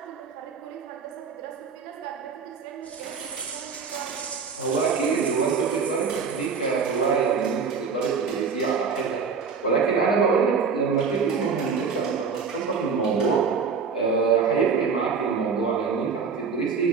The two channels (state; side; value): quieter; left; 5.6 dB